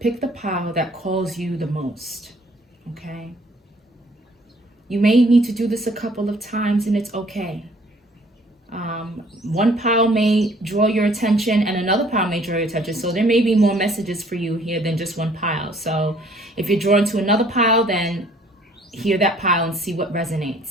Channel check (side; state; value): both; normal; correlation 0.59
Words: the pile that calls you the most, okay? You may need to do this a couple of times, and it's okay. One pile may draw your attention and another pile may draw your attention. So there may be more messages for you here than just one pile. So if you're drawn to another pile, then hear that pile and see what